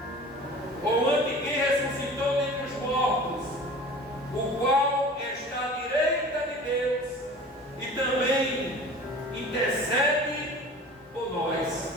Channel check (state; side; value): normal; both; correlation 0.41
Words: ou ante quem ressuscitou dentre os mortos, o qual está à direita de Deus e também intercede por